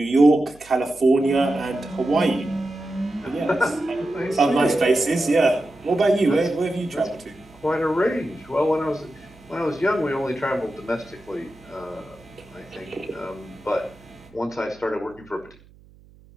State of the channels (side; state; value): right; noise; hum, 26 dB below the sound